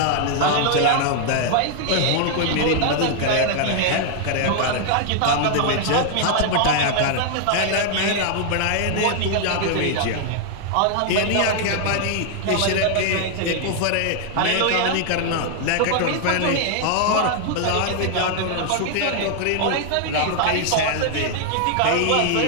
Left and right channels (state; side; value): different; both; correlation 0.00